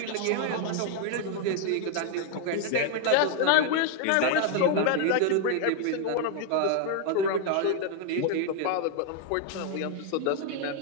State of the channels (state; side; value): different; both; correlation 0.00